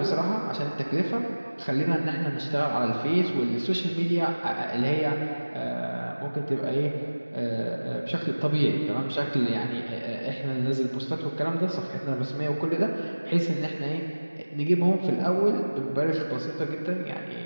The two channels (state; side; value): inverted; both; correlation -1.00